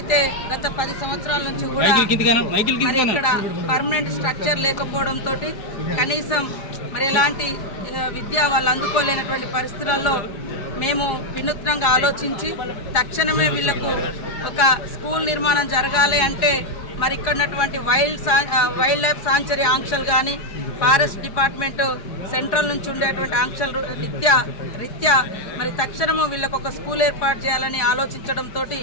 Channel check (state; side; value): late; right; 4.7 ms